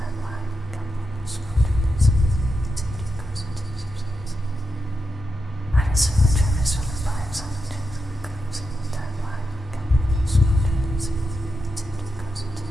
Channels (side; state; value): both; normal; correlation 0.87